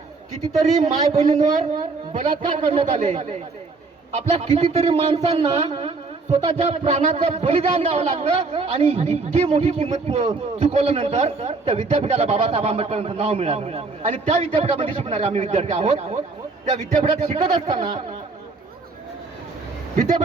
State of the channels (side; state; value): left; quieter; 4.0 dB